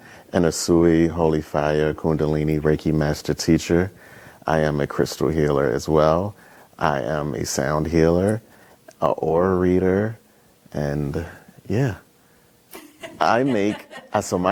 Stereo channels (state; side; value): identical; both; correlation 1.00